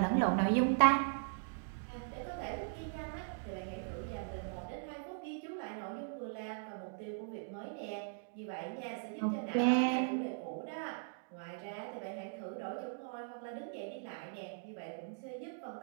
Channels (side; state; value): left; silent; digital silence